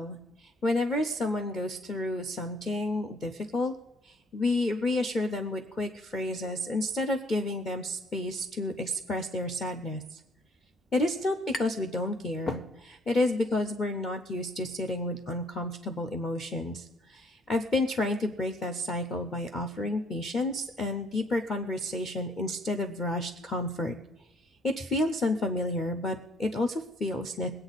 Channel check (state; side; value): normal; both; correlation 0.62